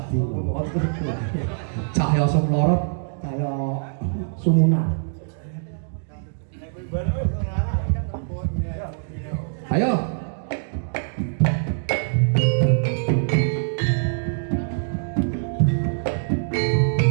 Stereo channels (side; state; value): left; silent; digital silence